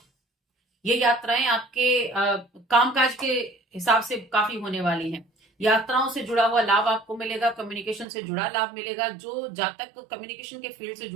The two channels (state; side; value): drops out; left; at 8.1 s